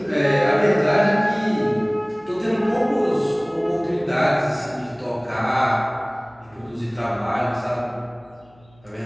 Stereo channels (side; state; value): left; noise; hum, 30 dB below the sound